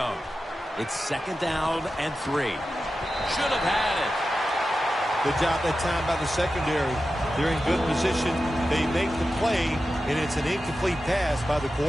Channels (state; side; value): normal; both; correlation 0.92